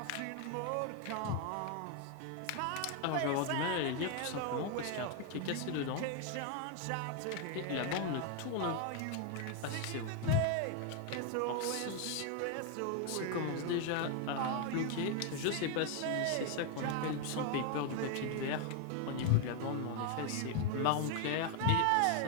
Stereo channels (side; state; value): both; different; correlation 0.01